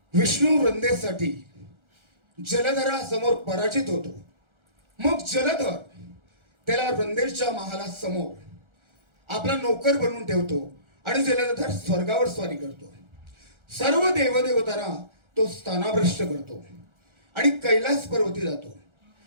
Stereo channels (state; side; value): late; left; 1.4 ms